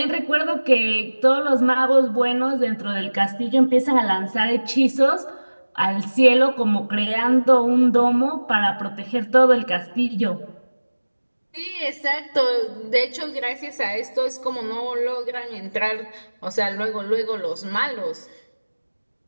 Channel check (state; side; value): inverted; both; correlation -1.00